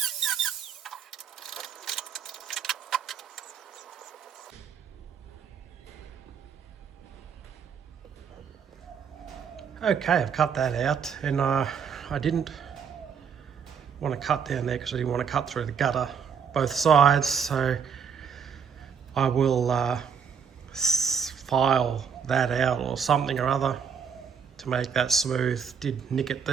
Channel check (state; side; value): quieter; left; 6.9 dB